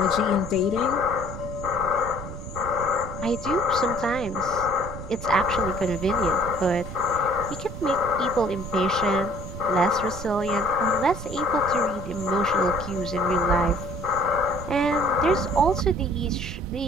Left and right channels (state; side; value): noise; right; rumble, 10 dB below the sound